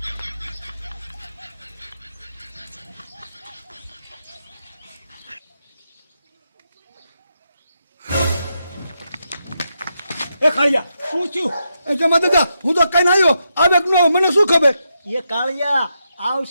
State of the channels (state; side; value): inverted; both; correlation -0.84